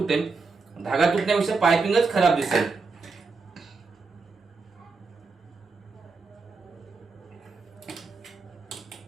धागा तुटण्यापेक्षा पायपिंगच खराब दिसेल.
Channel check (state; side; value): quieter; left; 4.3 dB